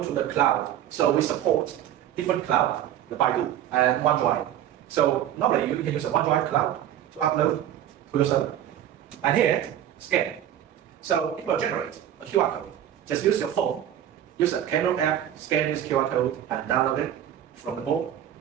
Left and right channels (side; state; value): left; quieter; 11.1 dB